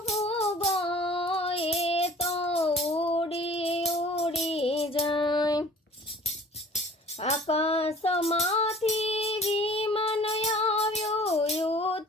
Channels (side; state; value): both; normal; correlation 0.47